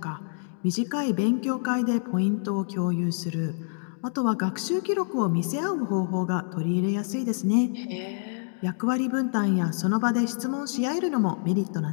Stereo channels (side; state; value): right; silent; digital silence